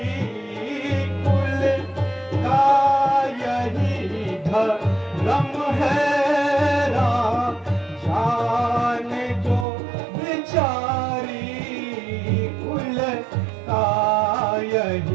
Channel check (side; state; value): left; drops out; at 9.7 s